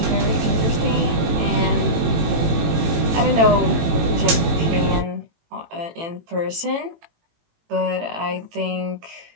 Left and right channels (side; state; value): left; late; 18 ms